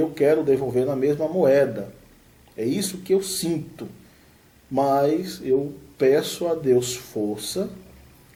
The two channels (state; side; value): identical; both; correlation 1.00